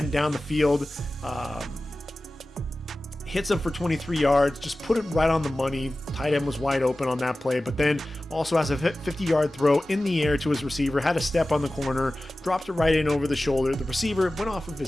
down the field, hits him for 23 yards, just put it right on the money. Tight end was wide open on that play, but then also has a 50-yard throw in the air to his receiver, had a step on the corner, dropped it right in over the shoulder. The receiver went off of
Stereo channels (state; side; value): normal; both; correlation 0.96